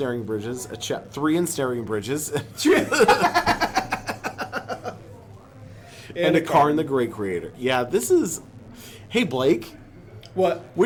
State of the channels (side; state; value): both; identical; correlation 1.00